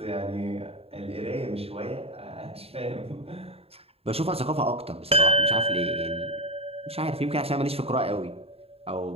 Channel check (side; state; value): left; late; 0.29 ms